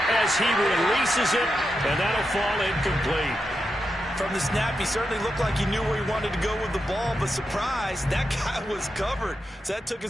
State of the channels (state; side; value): normal; both; correlation 0.87